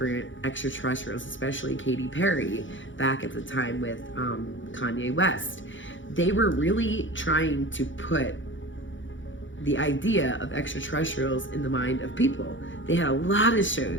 extraterrestrials, especially Katy Perry back at the time with Kanye West. They were really trying to put the idea of extraterrestrials in the mind of people. They had a lot of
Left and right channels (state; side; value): late; right; 0.56 ms